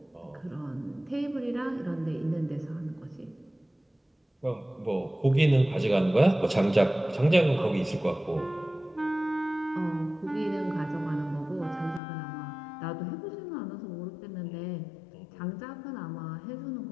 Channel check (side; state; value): right; drops out; at 12.0 s